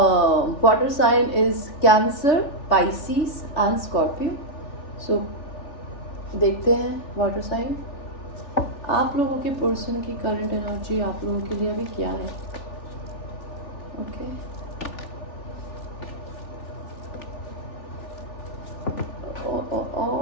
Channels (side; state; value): right; late; 3.4 ms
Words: water sign is Cancer, Pisces and Scorpio. So देखते हैं वाटर साइन, आप लोगों के पर्सन की करंट एनर्जी आप लोगों के लिए अभी क्या है. ओके